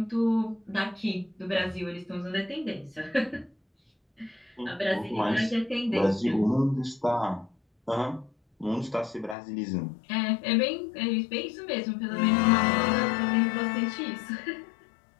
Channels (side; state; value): right; drops out; at 9.3 s